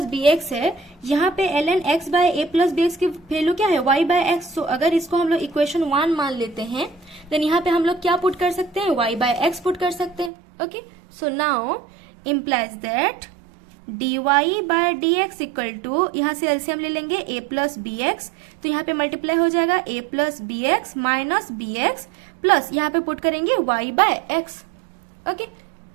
bx है, यहाँ पे ln x/a plus bx की वैल्यू क्या है, y/x. सो अगर इसको हम लोग इक्वेशन 1 मान लेते हैं देन यहाँ पे हम लोग क्या पुट कर सकते हैं, y/x पुट कर सकते हैं. Okay, so now implies that dy/dx = यहाँ से एलसीएम ले लेंगे a plus bx, तो यहाँ पे मल्टीप्लाई हो जाएगा a plus bx minus bx plus यहाँ पे पुट करेंगे y/x. Okay,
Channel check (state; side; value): drops out; left; at 10.3 s